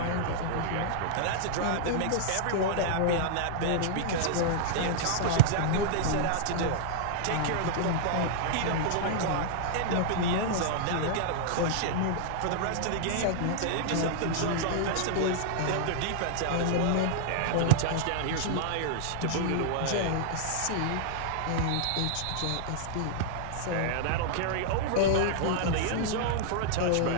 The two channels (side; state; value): both; different; correlation -0.01